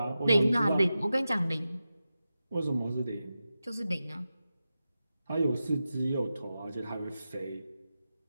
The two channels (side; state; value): both; inverted; correlation -0.92